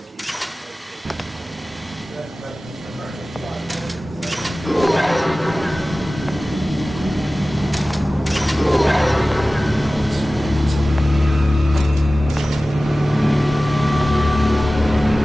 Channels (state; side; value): normal; both; correlation 0.97